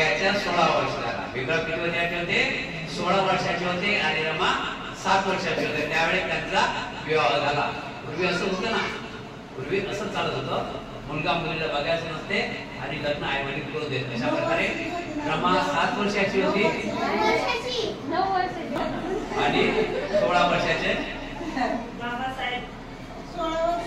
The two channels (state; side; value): identical; both; correlation 1.00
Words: 16 वर्ष झाला. भीमराव किती वर्षाचे होते? 16 वर्षाचे होते आणि रमा 7 वर्षाचे होते. त्यावेळेस त्यांचा विवाह झाला. पूर्वी असं होतं ना, पूर्वी असं चालत होतं, मुलगा मुलीला बघायचं नसते आणि लग्न आई वडील करू देत. अशा प्रकारे रमा 7 वर्षाची होती आणि 16 वर्षाचे